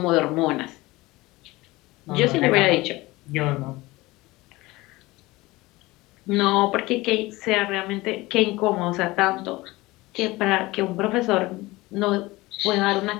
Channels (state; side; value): quieter; right; 20.5 dB